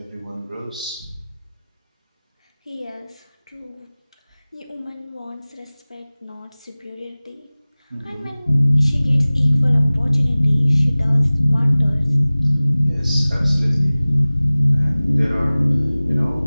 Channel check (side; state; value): both; inverted; correlation -0.99